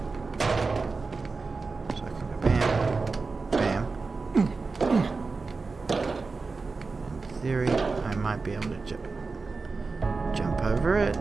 So I can go bam, bam. In theory, I might be able to jump over it.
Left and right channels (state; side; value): quieter; left; 4.2 dB